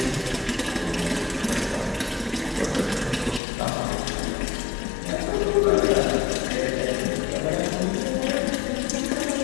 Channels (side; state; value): right; drops out; at 3.4 s